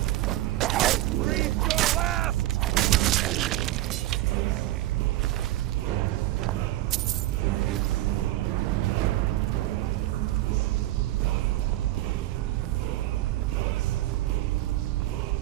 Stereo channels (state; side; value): quieter; left; 15.8 dB